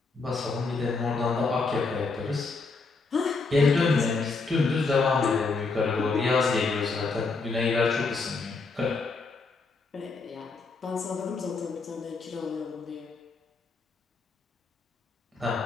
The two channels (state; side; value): quieter; right; 4.1 dB